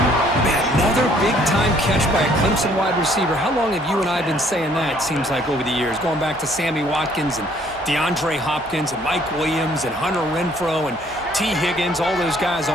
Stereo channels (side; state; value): both; normal; correlation 0.62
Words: Man, another big-time catch by a Clemson wide receiver. How long have you and I been saying that, seems like, over the years? Going back to Sammy Watkins and DeAndre Hopkins and Mike Williams and Hunter Renfrow and T. Higgins, all those guys